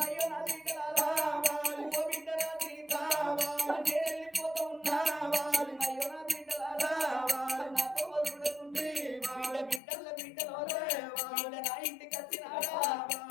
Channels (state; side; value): drops out; right; at 9.8 s